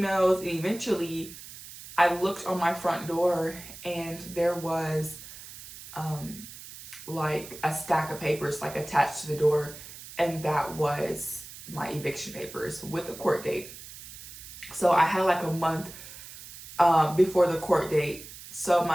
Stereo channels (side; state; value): right; noise; hiss, 15 dB below the sound